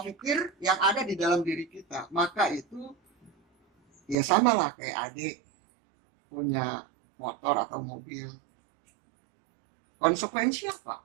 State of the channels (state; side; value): drops out; left; at 4.2 s